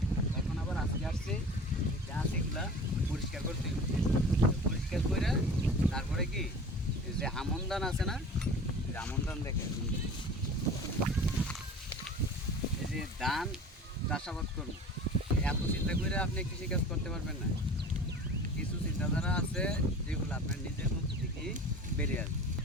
এখন আবার আজকে আসছি গাছ এগুলা পরিষ্কার করতে হবে। পরিষ্কার করে তারপরে কি যে আমন ধান আছে না, আমন ধান দেখে এই যে ধান চাষাবাদ করুন। এত চিন্তা করে আপনি কৃষিকাজ করতে পারবেন না। কিছু চিন্তাধারা আছে যেগুলো আপনার নিজের মধ্যে থেকেই বেরিয়ে আসবে।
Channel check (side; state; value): both; normal; correlation 0.40